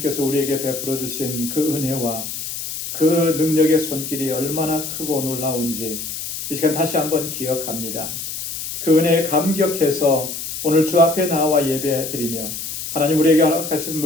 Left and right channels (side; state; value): left; noise; hiss, 7 dB below the sound